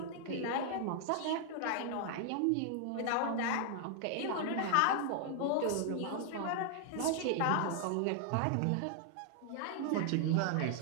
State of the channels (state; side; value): different; both; correlation 0.00